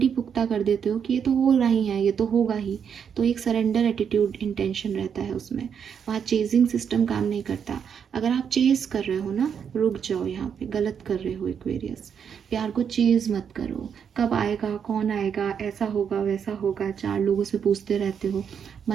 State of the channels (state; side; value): quieter; left; 7.5 dB